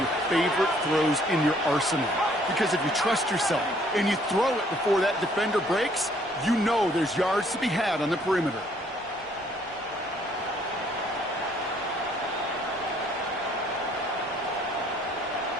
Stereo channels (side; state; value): both; normal; correlation 0.63